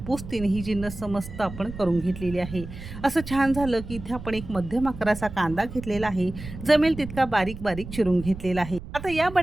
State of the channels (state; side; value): noise; right; rumble, 12 dB below the sound